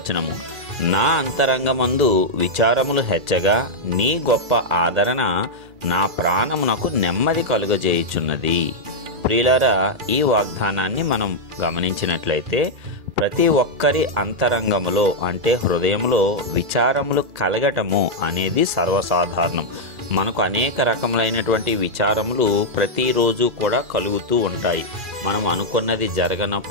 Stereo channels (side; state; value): left; late; 2.4 ms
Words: నా అంతరంగమందు విచారములు హెచ్చగా నీ గొప్ప ఆదరణ నా ప్రాణమునకు నెమ్మది కలుగజేయుచున్నది. ప్రియులారా, ఈ వాగ్దానాన్ని మనం గమనించినట్లయితే ప్రతి ఒక్కరి అంతరంగములో అంటే హృదయంలో విచారములు కలగటము అనేది సర్వసాధారణం. మనకు అనేక రకములైనటువంటి విచారములు ప్రతిరోజు కూడా కలుగుతూ ఉంటాయి. మనం అనుకున్నది